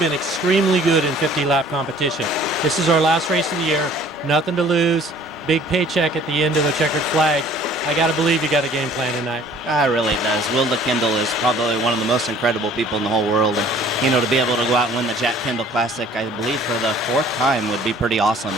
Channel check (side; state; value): both; normal; correlation 0.53